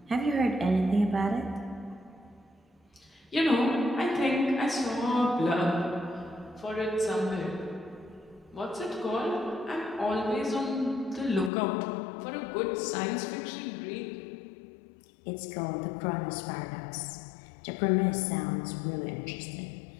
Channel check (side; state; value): right; drops out; at 11.5 s